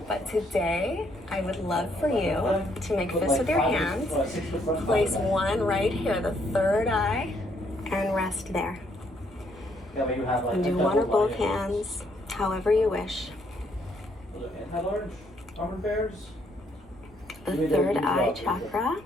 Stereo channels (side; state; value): both; normal; correlation 0.70